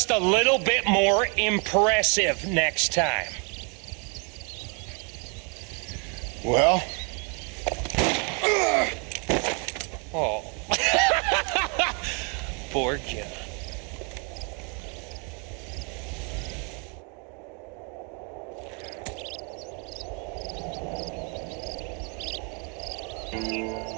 a little bit more impressive next time. Well? Oh. Poor John.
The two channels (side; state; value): left; quieter; 35.6 dB